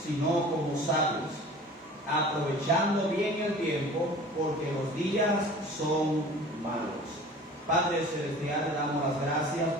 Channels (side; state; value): both; normal; correlation 0.43